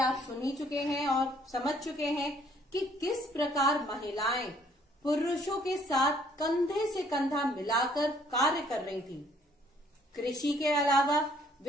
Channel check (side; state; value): both; normal; correlation 0.62